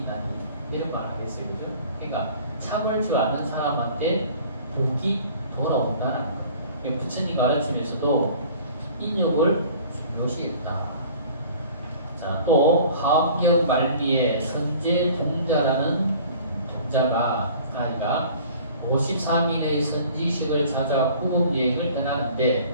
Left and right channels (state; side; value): inverted; both; correlation -0.48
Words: 이런 말 하겠어요, 그죠? 그러니까 참을 줄 아는 사람한테 복이 돌아온다는 거예요. 부처님 가르침에서도 인욕을 중요시했다. 자, 또 화엄경 말미에 선제 동자라는 동자가 아이가 53일의 선지식을 찾아 구급 여행을